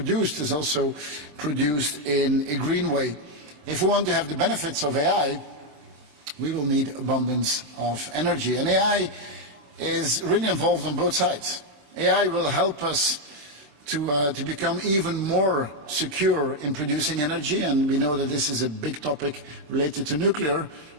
is also produced in a green way. If we want to have the benefits of AI, we will need abundance of energy. And AI is really involved on both sides. AI will help us to become even more secure in producing energy, and we know that this is a big topic related to nuclear,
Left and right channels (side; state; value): left; late; 27 ms